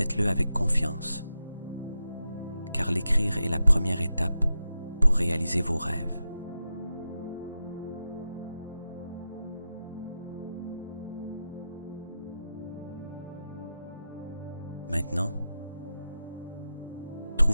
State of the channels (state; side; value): inverted; both; correlation -0.89